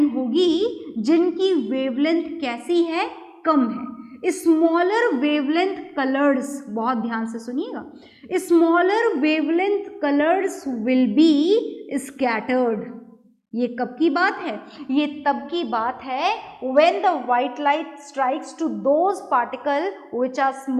होगी जिनकी वेवलेंथ कैसी है? कम है। स्मॉलर वेवलेंथ कलर्स, बहुत ध्यान से सुनिएगा, smaller wavelength colours will be scattered. ये कब की बात है? ये तब की बात है when the white light strikes to those particles which are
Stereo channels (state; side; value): identical; both; correlation 1.00